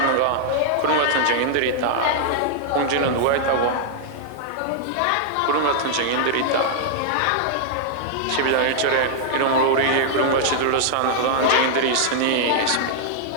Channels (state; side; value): different; both; correlation -0.01